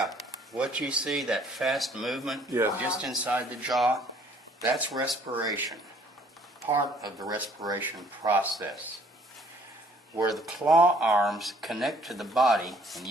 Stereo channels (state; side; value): normal; both; correlation 0.60